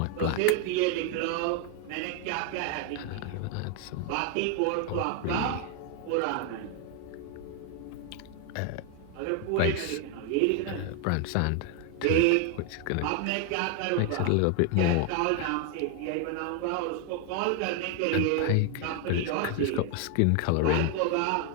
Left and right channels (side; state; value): both; different; correlation 0.01